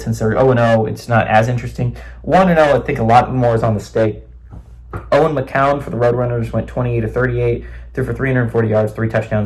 since they're 0-0, it's not as interesting. 1-0, I think a lot more is on the stake. Owen McCown for the Roadrunners went 28-38, threw for 340 yards, 3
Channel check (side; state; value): both; identical; correlation 1.00